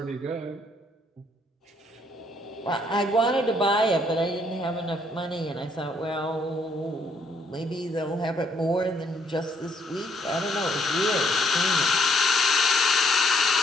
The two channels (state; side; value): normal; both; correlation 0.69